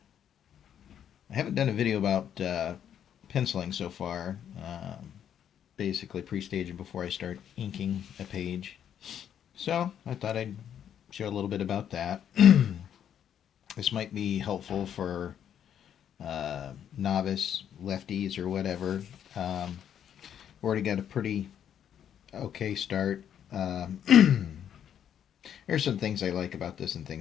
haven't done a video about penciling so far. Basically, pre-staging before I start inking a page. So I thought I'd share a little bit about that. This might be helpful for novice lefties or whatever. Already got a pretty okay start. There's some things I like about this and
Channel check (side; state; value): right; quieter; 9.4 dB